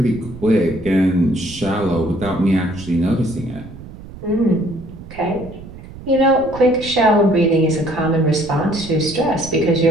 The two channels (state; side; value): noise; right; rumble, 15 dB below the sound